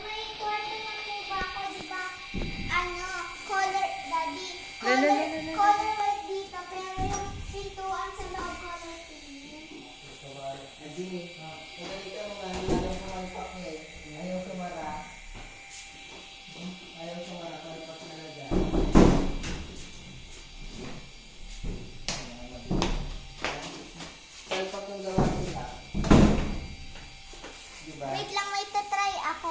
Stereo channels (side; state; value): both; identical; correlation 1.00